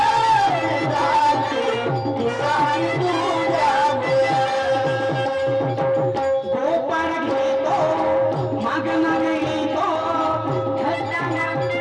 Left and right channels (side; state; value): both; identical; correlation 1.00